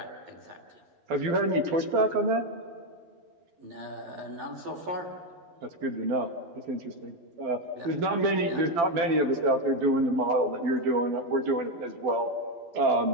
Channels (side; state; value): left; late; 12 ms